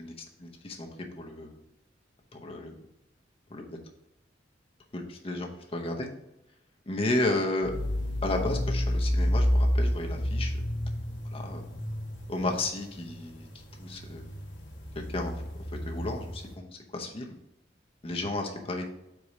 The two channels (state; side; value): normal; both; correlation 0.75